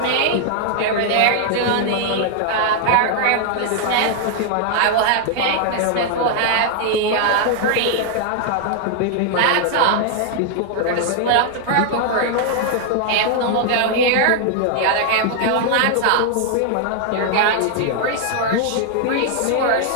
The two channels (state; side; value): different; both; correlation 0.00